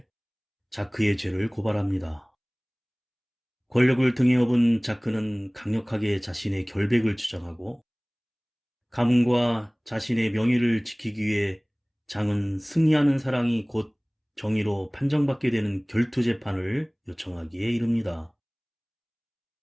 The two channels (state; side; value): identical; both; correlation 1.00